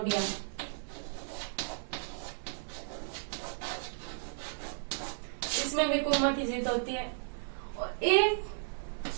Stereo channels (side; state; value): left; silent; 55 dB below the other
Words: इसमें भी कुम्मा की जीत होती है। और एक